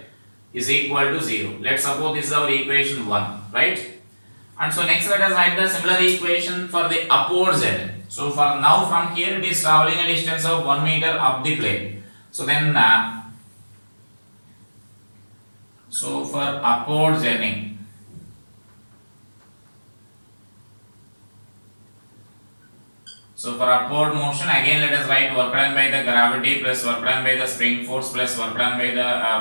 is equal to 0. Let's suppose this is our equation 1, right? And so next let us write the similar equation for the upward z. So for now from here it is traveling a distance of 1 meter up the plane. So then so for upward journey, so for upward motion, again let us write work done by the gravity plus work done by the spring force plus work done by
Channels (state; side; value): inverted; both; correlation -1.00